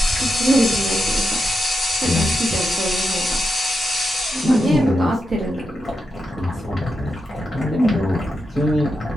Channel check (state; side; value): normal; both; correlation 0.87